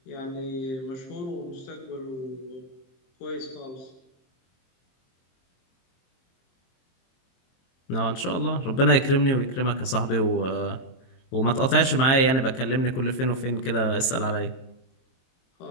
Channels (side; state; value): right; late; 23 ms